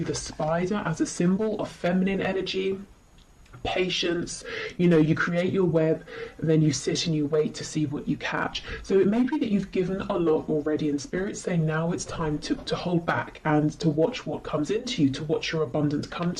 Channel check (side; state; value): both; identical; correlation 1.00